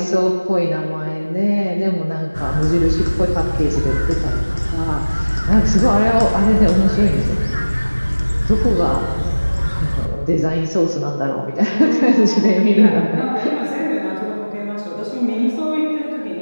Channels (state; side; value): inverted; both; correlation -1.00